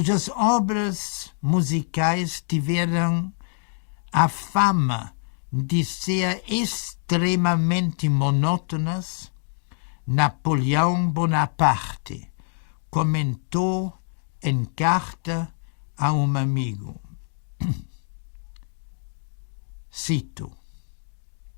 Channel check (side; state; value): right; silent; 56 dB below the other